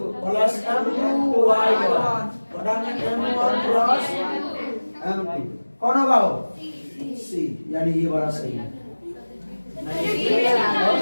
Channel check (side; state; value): both; inverted; correlation -1.00